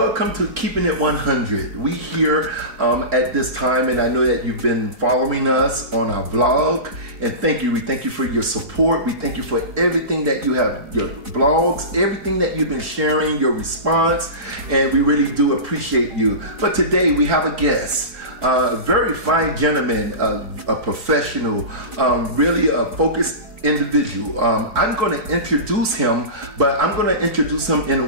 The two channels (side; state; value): left; late; 4.8 ms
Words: to Keeping It 100. We here at this time, and I know that you've been following us on our vlog. And thank you. We thank you for your support. We thank you for everything that you have, your blogs, everything that you've been sharing, your response. And we really do appreciate you. But today we have a guest. A very fine gentleman, a professional, really a focused individual. I'm going to introduce him, but I'm going to introduce him in a